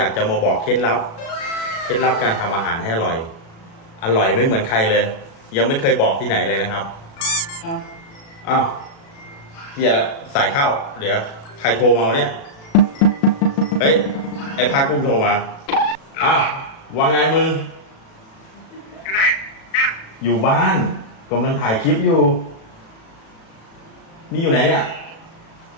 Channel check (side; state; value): right; late; 36 ms